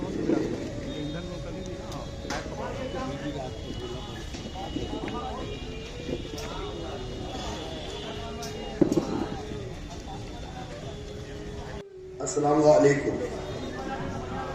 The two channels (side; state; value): both; identical; correlation 1.00